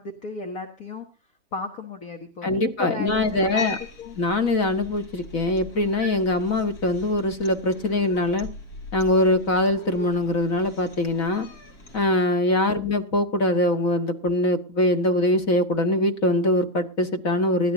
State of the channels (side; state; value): right; late; 4.0 ms